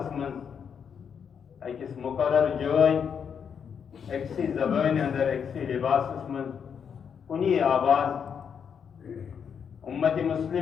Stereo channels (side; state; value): right; quieter; 7.2 dB